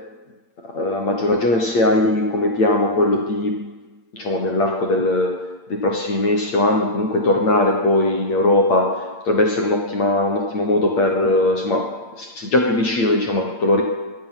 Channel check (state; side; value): late; right; 8.7 ms